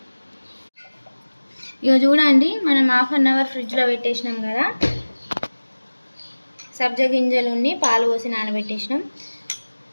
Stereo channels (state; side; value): inverted; both; correlation -1.00